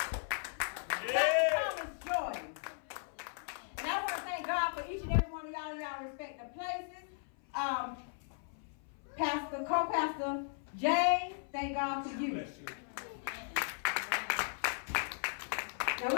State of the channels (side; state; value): right; silent; 53 dB below the other